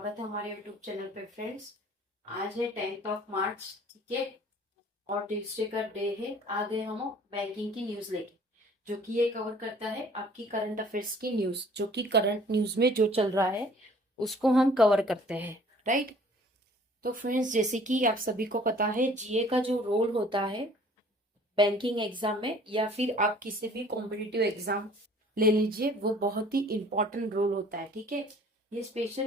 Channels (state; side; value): normal; both; correlation 0.53